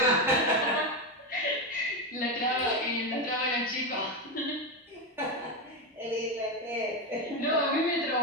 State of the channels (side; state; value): both; normal; correlation 0.12